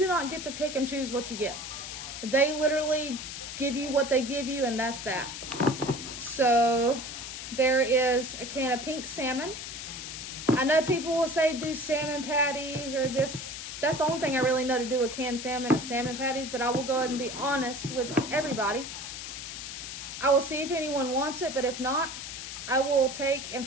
not get to pick and choose what you get. They literally give you what they give you, and that's that. So there is a can of pink salmon. I know people will say do salmon patties or this. That's the only thing I really know to do with canned salmon is salmon patties, but I will go ahead and be honest with everybody. I will see if anyone wants it, but if not, I will take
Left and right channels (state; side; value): noise; left; hiss, 8 dB below the sound